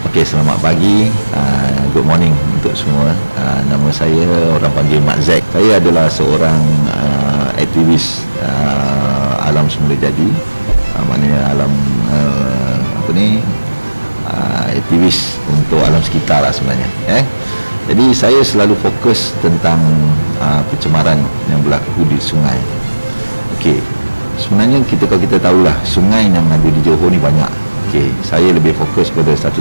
Okey, selamat pagi, good morning untuk semua. Nama saya orang panggil Mak Zack. Saya adalah seorang aktivis alam semula jadi, maknanya alam aktivis untuk alam sekitar lah sebenarnya. Jadi saya selalu fokus tentang pencemaran yang berlaku di sungai. Okey, sebenarnya kalau kita tahulah sungai yang ada di Johor ni banyak. Okey, saya lebih fokus pada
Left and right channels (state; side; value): inverted; both; correlation -1.00